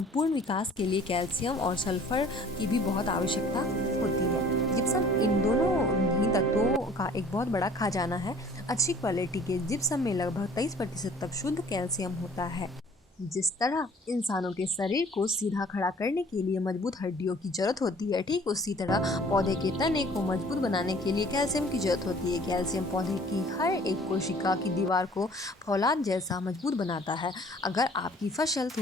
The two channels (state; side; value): normal; both; correlation 0.52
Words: विकास के लिए कैल्शियम और सल्फर की भी बहुत आवश्यकता होती है। जिप्सम इन दोनों ही तत्वों का एक बहुत बड़ा खजाना है। अच्छी क्वालिटी के जिप्सम में लगभग 23% तक शुद्ध कैल्शियम होता है। जिस तरह इंसानों के शरीर को सीधा खड़ा करने के लिए मजबूत हड्डियों की जरूरत होती है, ठीक उसी तरह पौधे के तने को मजबूत बनाने के लिए कैल्शियम की जरूरत होती है। कैल्शियम पौधे की हर एक कोशिका की दीवार को फौलाद जैसा मजबूत बनाता है। अगर आपकी फसल